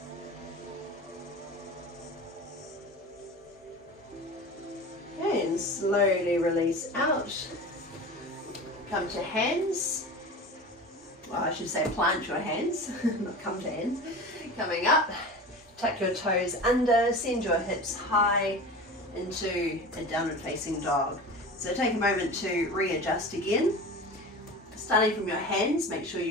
And slowly release out. Come to hands. Well, I should say plant your hands, not come to hands. Coming up, tuck your toes under, send your hips high into a downward facing dog. So take a moment to readjust again. Starting from your hands, make sure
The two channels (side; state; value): both; normal; correlation 0.33